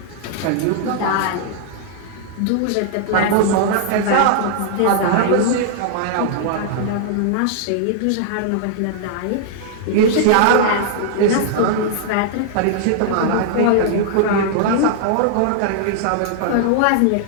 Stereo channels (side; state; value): both; different; correlation -0.01